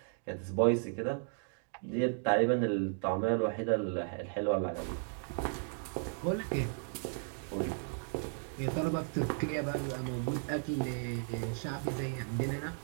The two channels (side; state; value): left; silent; 54 dB below the other